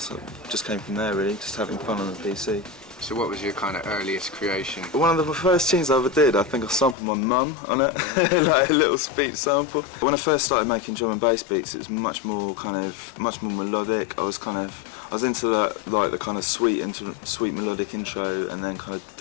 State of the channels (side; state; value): right; drops out; at 7.0 s